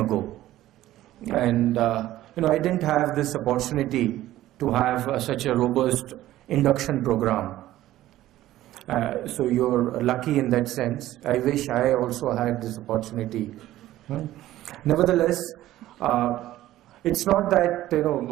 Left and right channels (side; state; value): left; quieter; 14.7 dB